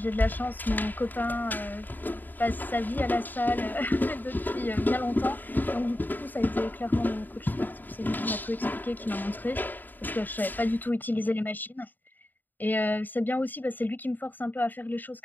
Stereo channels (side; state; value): right; late; 0.089 ms